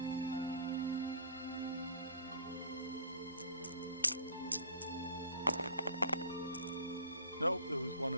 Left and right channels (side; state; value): both; inverted; correlation -0.47